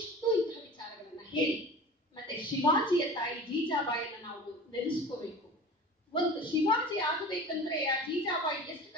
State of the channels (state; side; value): normal; both; correlation 0.37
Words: ಇಂತಹ ವಿಚಾರಗಳನ್ನ ಹೇಳಿ. ಮತ್ತೆ ಶಿವಾಜಿಯ ತಾಯಿ ಜೀಜಾಬಾಯಿಯನ್ನ ನಾವು ನೆನೆಸ್ಕೋಬೇಕು. ಒಂದು ಶಿವಾಜಿ ಆಗಬೇಕಂದ್ರೆ ಆ ಜೀಜಾಬಾಯಿ ಎಷ್ಟು